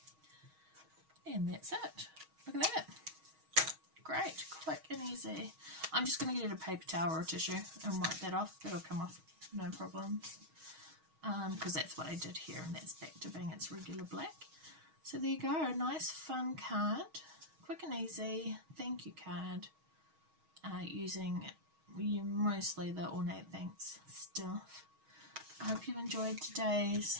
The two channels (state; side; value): late; left; 6.3 ms